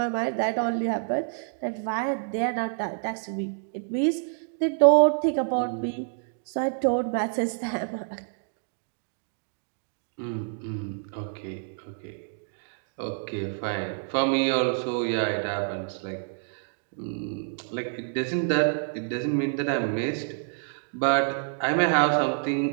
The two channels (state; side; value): silent; left; digital silence